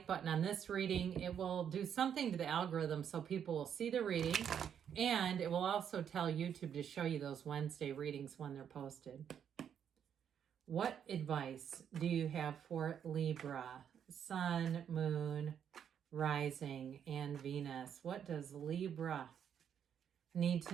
button on this reading, it will do something to the algorithm so people will see the reading, and it will also tell YouTube to show you those Wednesday readings when they're posted. What advice do you have for Libra, Sun, Moon, Rising, and Venus? What does Libra need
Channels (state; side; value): quieter; left; 8.5 dB